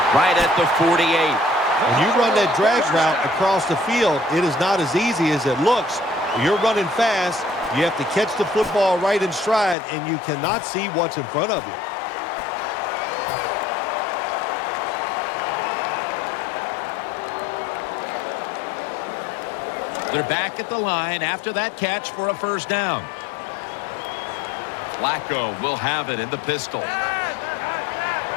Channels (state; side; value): drops out; right; at 9.8 s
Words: right at the 48. When you run that drag route across the field, it is not as easy as it looks. When you're running fast, you have to catch the football right in stride, and you cannot see what's in front of you. They're back at the line after that catch for a first down. Flacco will have it in the pistol.